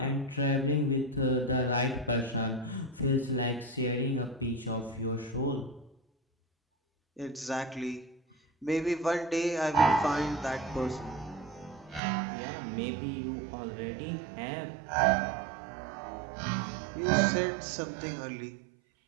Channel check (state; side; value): drops out; left; at 12.0 s